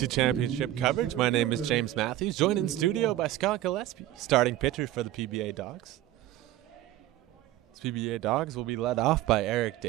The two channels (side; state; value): left; quieter; 14.0 dB